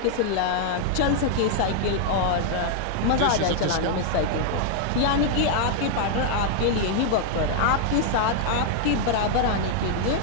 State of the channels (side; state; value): both; different; correlation -0.01